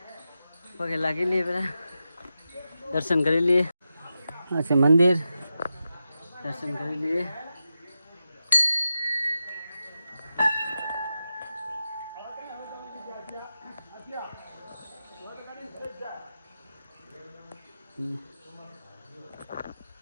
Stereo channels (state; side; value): inverted; both; correlation -0.90